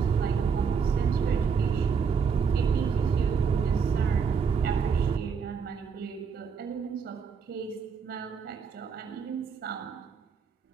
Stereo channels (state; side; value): quieter; left; 6.1 dB